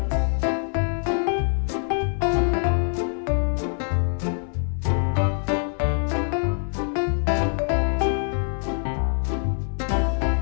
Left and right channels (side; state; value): right; silent; 56 dB below the other